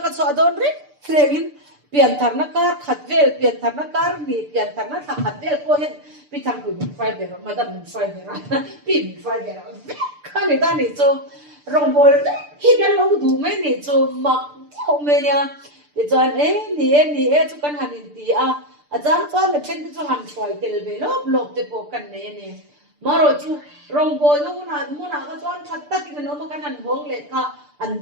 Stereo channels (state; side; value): late; left; 6.8 ms